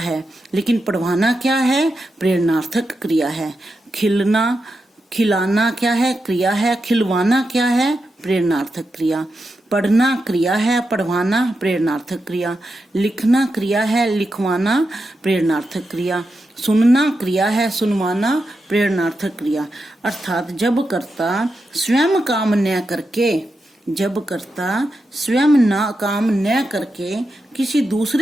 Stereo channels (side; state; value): both; normal; correlation 0.88